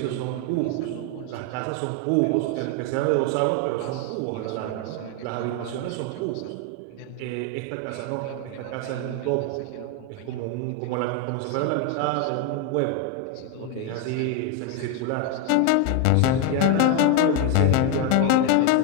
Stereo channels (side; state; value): both; different; correlation 0.01